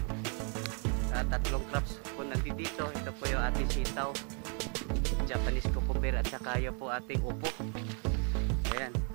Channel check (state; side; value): quieter; left; 39.7 dB